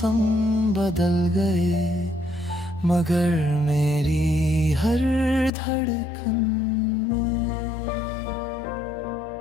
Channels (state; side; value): drops out; right; at 5.5 s